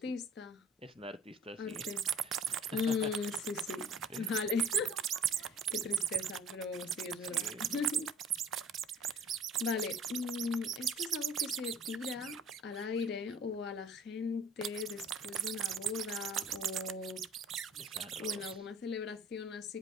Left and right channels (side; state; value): both; normal; correlation 0.50